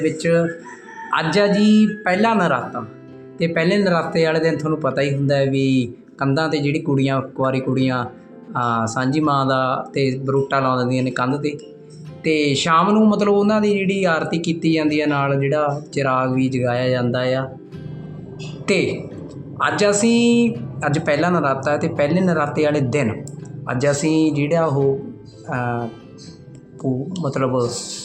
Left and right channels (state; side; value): identical; both; correlation 1.00